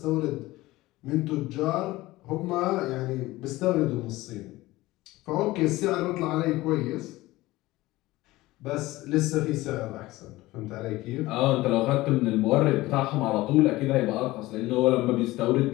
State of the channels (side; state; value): right; quieter; 18.6 dB